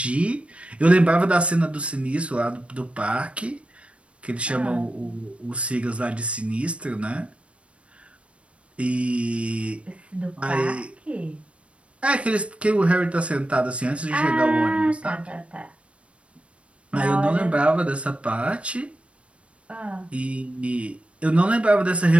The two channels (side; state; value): left; late; 0.061 ms